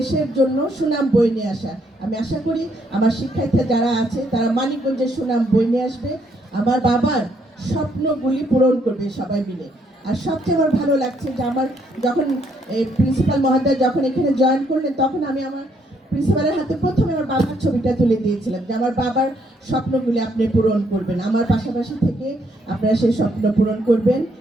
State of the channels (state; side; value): normal; both; correlation 0.71